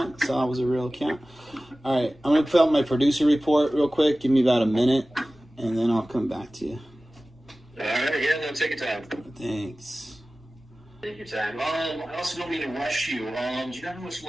Saw it was a real account. All right, I'm going to fill out my producer report real quick. Give me about a minute, and then I'll come back to you. All right, yeah, no, take your time. Thanks. Take your time. I also don't mean to rush you. Do you know how much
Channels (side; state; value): both; normal; correlation 0.97